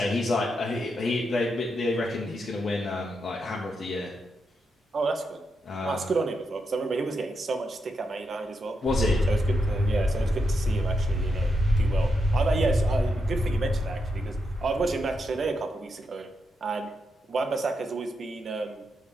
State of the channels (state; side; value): normal; both; correlation 0.83